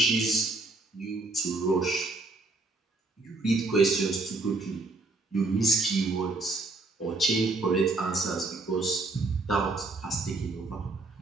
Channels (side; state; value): left; quieter; 3.3 dB